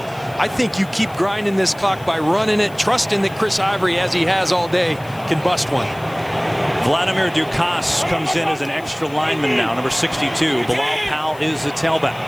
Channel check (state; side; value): noise; left; hiss, 24 dB below the sound